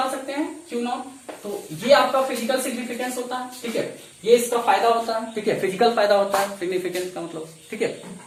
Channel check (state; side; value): identical; both; correlation 1.00